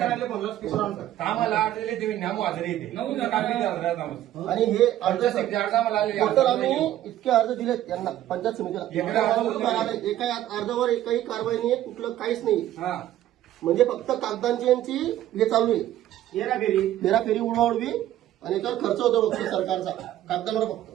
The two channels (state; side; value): quieter; left; 13.0 dB